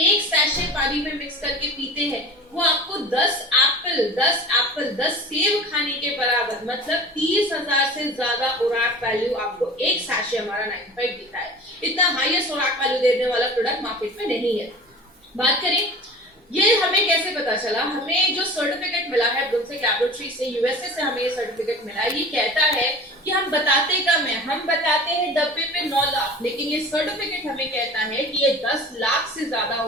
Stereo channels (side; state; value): both; normal; correlation 0.38